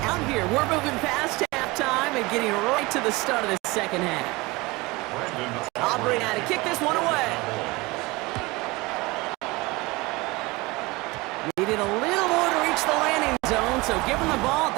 here. We're moving past halftime and getting right to the start of the second half. Aubrey now to kick this one away. Needed a little more to reach the landing zone, so give him the ball at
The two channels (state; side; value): quieter; left; 23.0 dB